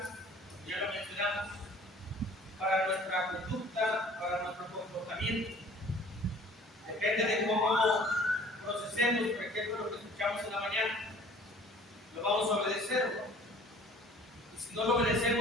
ya lo mencionamos, para nuestra conducta, para nuestro comportamiento. Depende de cómo procesemos, por ejemplo, lo que escuchamos en la mañana. Lo vamos a obedecer, ¿no? Y si no lo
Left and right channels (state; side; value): normal; both; correlation 0.51